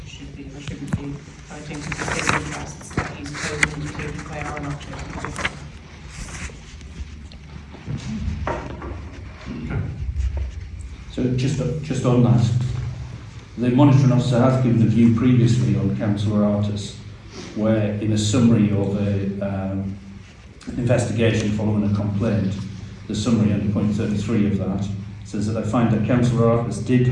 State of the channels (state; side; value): identical; both; correlation 1.00